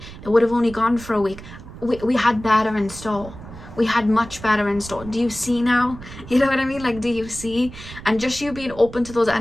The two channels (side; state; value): right; noise; rumble, 15 dB below the sound